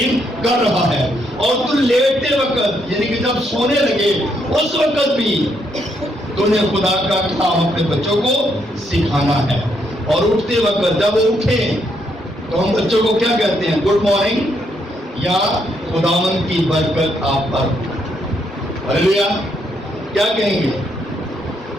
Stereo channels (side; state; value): both; normal; correlation 0.75